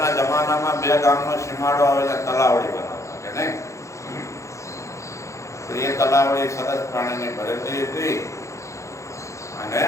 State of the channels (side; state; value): right; late; 0.15 ms